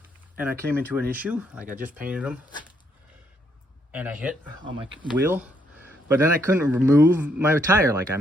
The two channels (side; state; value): both; normal; correlation 0.73